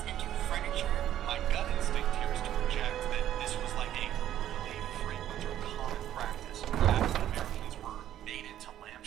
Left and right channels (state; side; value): quieter; left; 11.8 dB